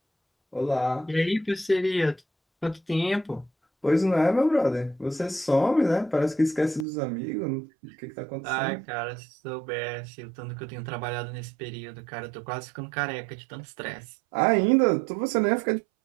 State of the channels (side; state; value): left; drops out; at 6.9 s